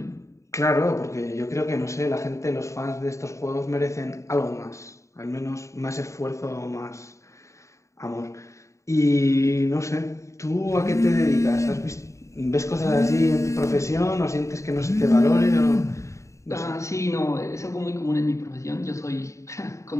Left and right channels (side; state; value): right; late; 0.14 ms